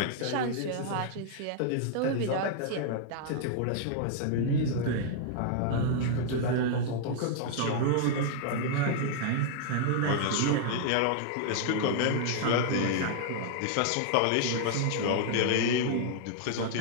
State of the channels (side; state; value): both; different; correlation -0.01